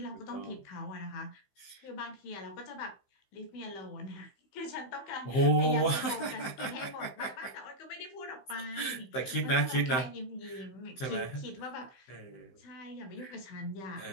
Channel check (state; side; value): late; right; 15 ms